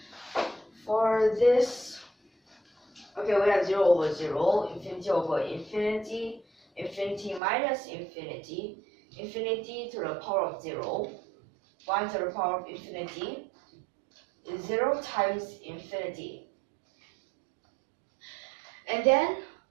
For this, okay, we have 0 over 0, infinity over infinity, infinity minus infinity, infinity to the power of 0, 1 to the power of infinity, is 0 times infinity. And then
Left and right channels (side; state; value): left; drops out; at 7.4 s